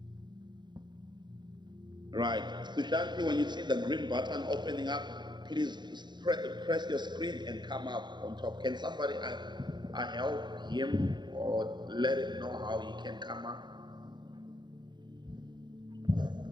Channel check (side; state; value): left; late; 0.21 ms